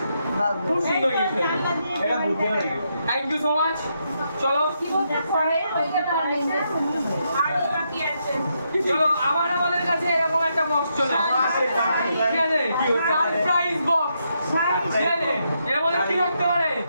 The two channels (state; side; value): inverted; both; correlation -0.80